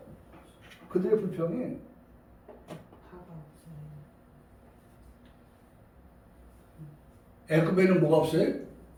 그들의 불평이 애굽에는 뭐가 없어요?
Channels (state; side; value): identical; both; correlation 1.00